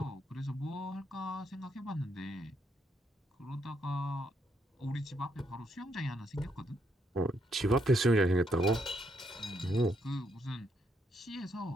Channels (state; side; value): normal; both; correlation 0.75